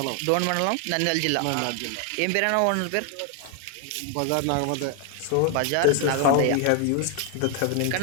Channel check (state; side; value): different; both; correlation 0.00